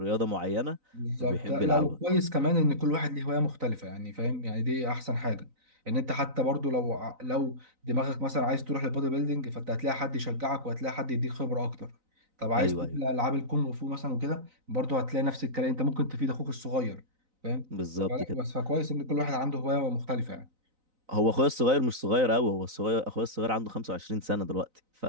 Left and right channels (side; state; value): left; late; 3.9 ms